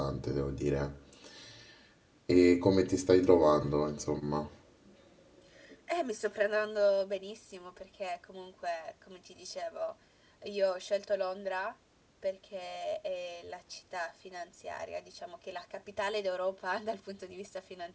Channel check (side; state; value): both; identical; correlation 1.00